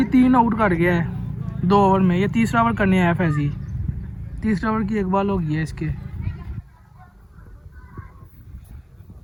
3 आउट कर गया है 2 ओवर में। ये तीसरा ओवर करने आया फैजी। तीसरा ओवर की एक बॉल हो गई है इसके।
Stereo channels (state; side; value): identical; both; correlation 1.00